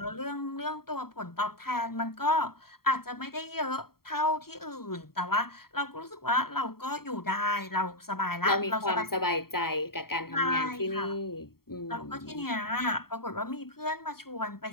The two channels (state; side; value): late; right; 0.94 ms